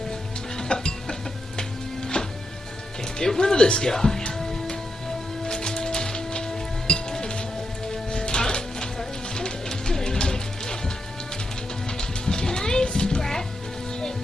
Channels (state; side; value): normal; both; correlation 0.84